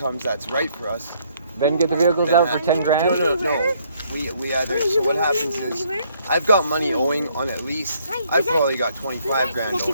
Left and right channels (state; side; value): inverted; both; correlation -0.67